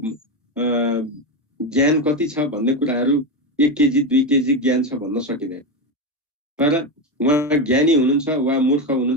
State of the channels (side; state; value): both; normal; correlation 0.13